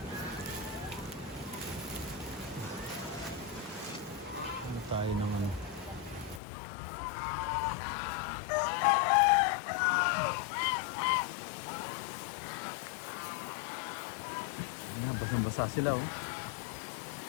Ano tayo ng ano? Basang-basa sila, oh.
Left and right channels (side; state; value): right; drops out; at 6.4 s